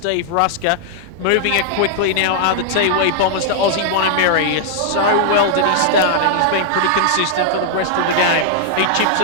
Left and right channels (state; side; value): different; both; correlation -0.01